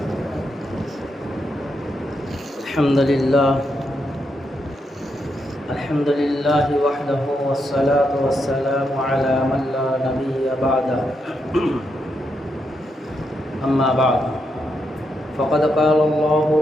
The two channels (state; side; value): normal; both; correlation 0.82